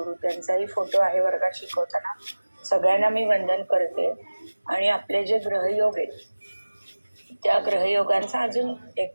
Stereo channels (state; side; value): inverted; both; correlation -1.00